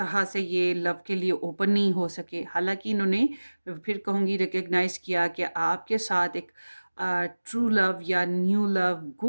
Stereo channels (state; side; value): inverted; both; correlation -1.00